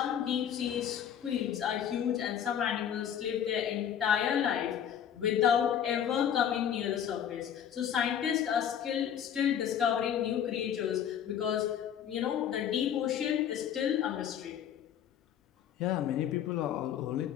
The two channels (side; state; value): right; quieter; 9.2 dB